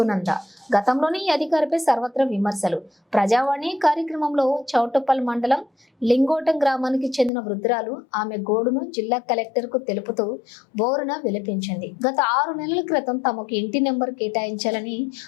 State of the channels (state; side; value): drops out; right; at 7.3 s